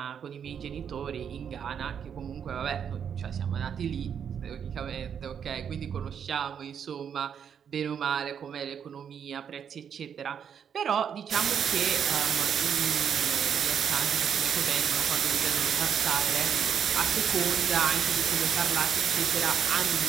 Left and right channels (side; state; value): left; quieter; 7.9 dB